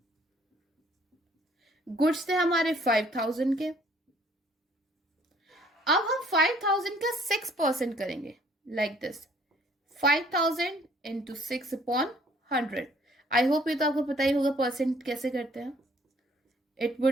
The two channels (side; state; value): both; normal; correlation 0.60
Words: Goods थे हमारे 5,000 के। अब हम 5,000 का 6% करेंगे, like this 5,000 into 6/100। I hope ये तो आपको पता ही होगा परसेंट कैसे करते हैं। It